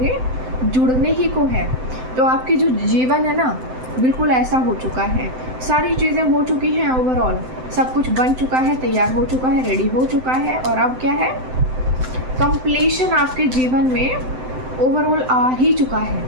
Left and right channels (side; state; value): left; late; 7.8 ms